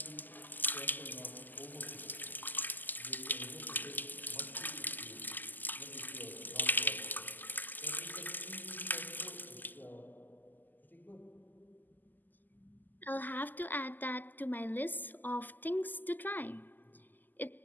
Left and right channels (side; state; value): right; late; 0.086 ms